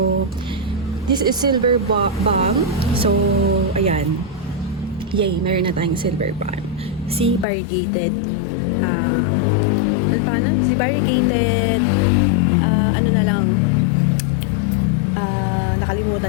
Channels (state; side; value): drops out; right; at 7.5 s